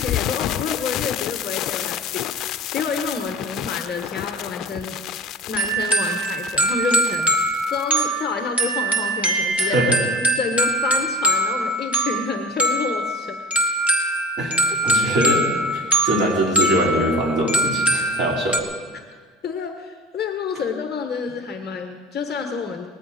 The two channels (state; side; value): normal; both; correlation 0.32